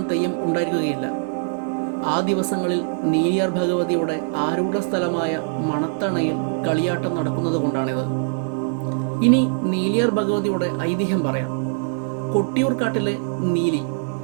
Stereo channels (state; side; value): silent; left; digital silence